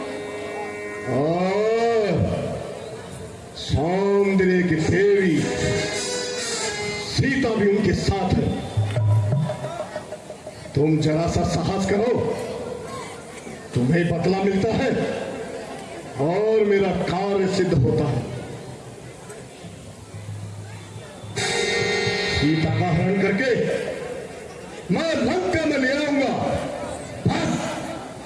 और सौंदर्य की देवी सीता भी उनके साथ है। तुम जरा सा साहस करो, तुम्हें बदला मिलता है और मेरा कार्य सिद्ध होता है। सीता का हरण करके मैं लंका में ले आऊंगा। बस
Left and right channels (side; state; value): both; identical; correlation 1.00